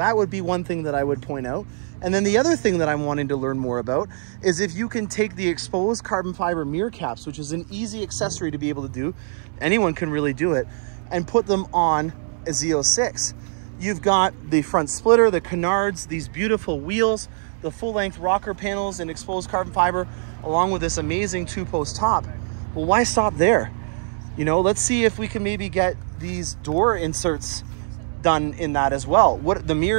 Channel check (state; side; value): silent; left; 64 dB below the other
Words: would be one thing that I would point out. And then the other thing that I'm wanting to learn more about is if you can take the exposed carbon fiber mirror caps, which is an easy accessory to be able to do, anyone can really do it, and put them on a Z06. You've got the front splitter, the canards, these beautiful wheels, the full-length rocker panels and exposed carbon fiber, along with this amazing two-post top. Well, why stop there? You know, let's see if we can maybe get these door inserts done in that as well. The